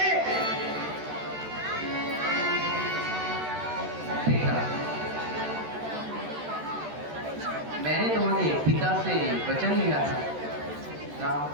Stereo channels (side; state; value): left; late; 13 ms